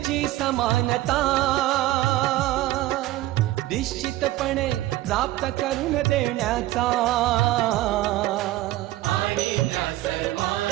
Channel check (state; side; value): quieter; left; 16.2 dB